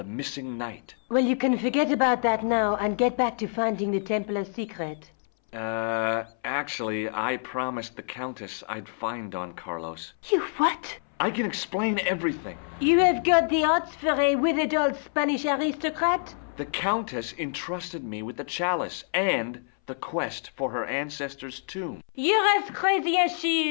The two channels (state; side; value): silent; right; 60 dB below the other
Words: missing knight. Well, you can forget about that now and get back to finding the Templars' secret. Actually, I promised the Countess I'd find Don Carlos. You what? I can explain everything. You have got the odds for a withered old Spanish aristocrat? The Countess entrusted me with the chalice and the quest for her ancestor's tomb. You're as crazy as